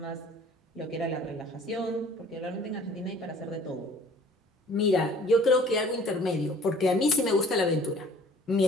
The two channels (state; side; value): normal; both; correlation 0.52